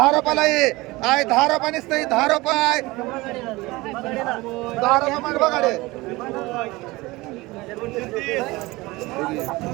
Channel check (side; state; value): left; quieter; 21.3 dB